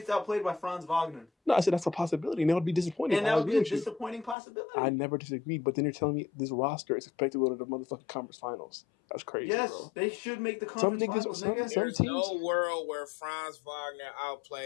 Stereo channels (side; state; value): right; drops out; at 4.4 s